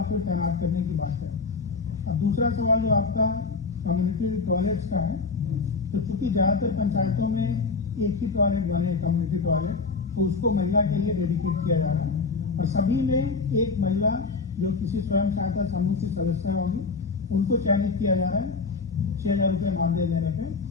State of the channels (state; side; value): quieter; right; 4.4 dB